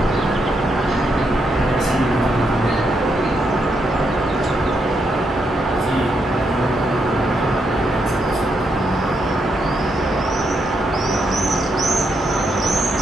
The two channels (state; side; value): normal; both; correlation 0.79